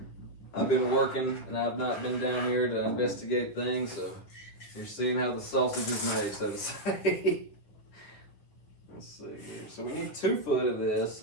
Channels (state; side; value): late; right; 9.9 ms